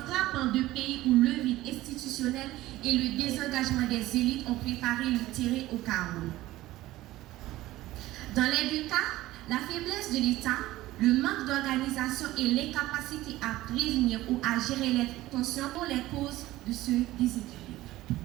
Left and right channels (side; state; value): left; quieter; 16.6 dB